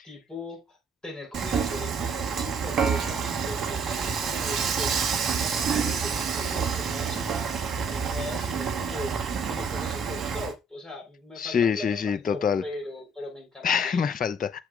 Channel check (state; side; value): normal; both; correlation 0.62